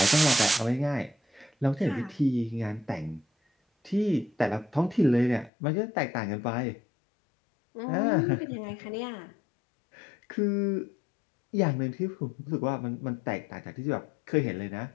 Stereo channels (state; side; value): drops out; right; at 5.5 s